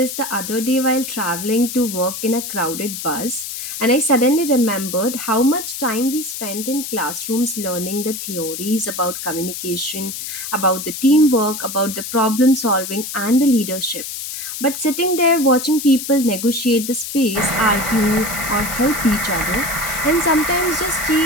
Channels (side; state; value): left; noise; hiss, 7 dB below the sound